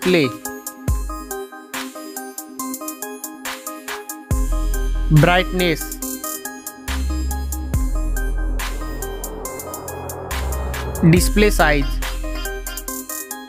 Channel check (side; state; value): both; identical; correlation 1.00